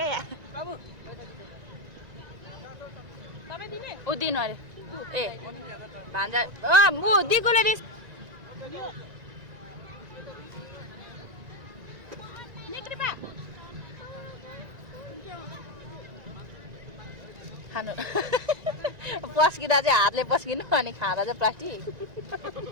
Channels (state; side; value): late; left; 1.9 ms